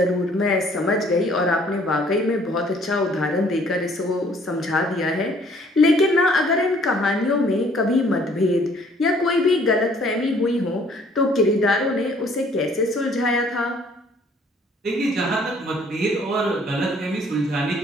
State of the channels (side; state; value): both; normal; correlation 0.60